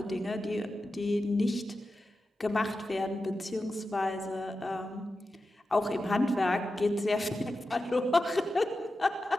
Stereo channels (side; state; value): both; normal; correlation 0.92